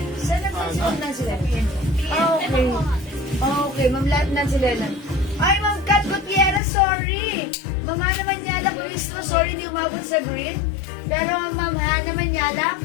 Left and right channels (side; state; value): right; drops out; at 6.6 s